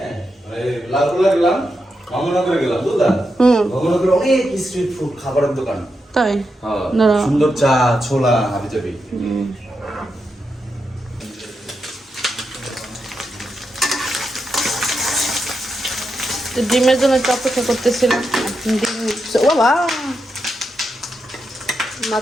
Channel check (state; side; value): normal; both; correlation 0.86